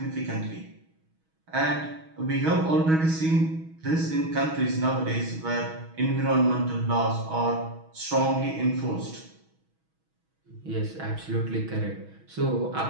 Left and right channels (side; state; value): left; late; 6.2 ms